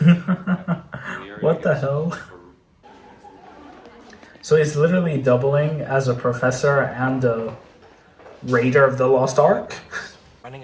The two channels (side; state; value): both; identical; correlation 1.00